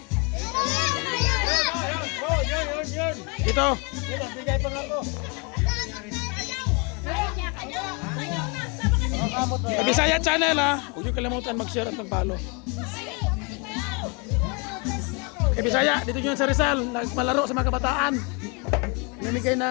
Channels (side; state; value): right; quieter; 32.4 dB